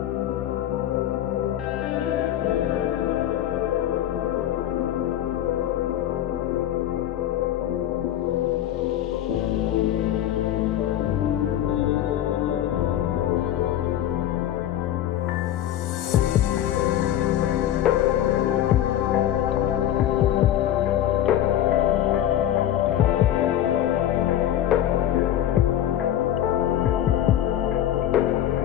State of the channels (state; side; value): quieter; right; 11.8 dB